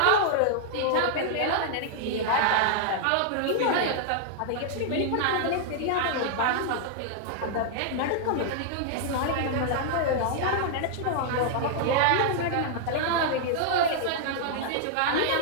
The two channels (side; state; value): both; different; correlation -0.01